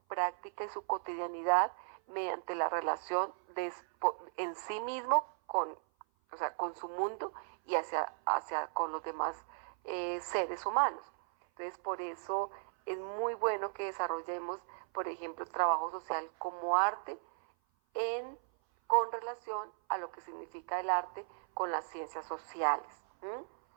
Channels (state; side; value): silent; left; 54 dB below the other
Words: práctica y su cotidianidad mediante la relación en sí mismo con su mundo y hacia con los demás seres humanos. Entonces, por eso es muy bueno que desarrollemos, por ejemplo, trabajo social como arte con relación a lo que significa el arte con las ciencias sociales.